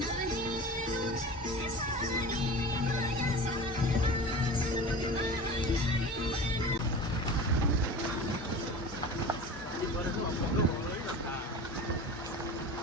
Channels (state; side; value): normal; both; correlation 0.34